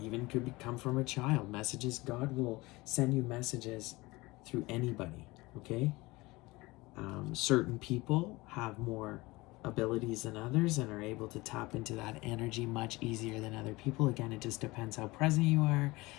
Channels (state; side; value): quieter; right; 21.8 dB